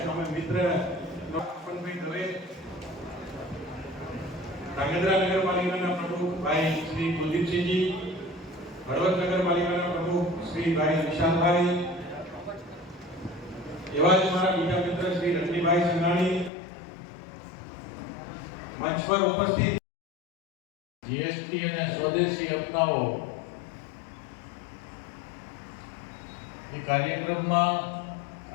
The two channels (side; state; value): right; drops out; at 16.5 s